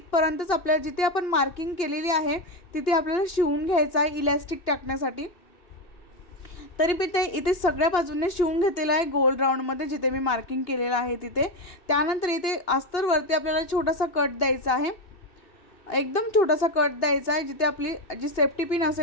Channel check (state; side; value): late; right; 2.8 ms